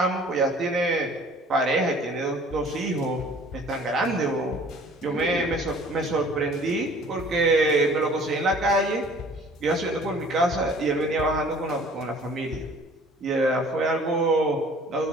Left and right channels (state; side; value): normal; both; correlation 0.51